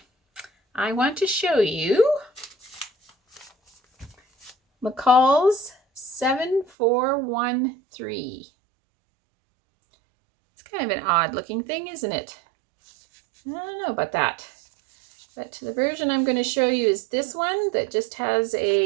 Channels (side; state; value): left; drops out; at 6.7 s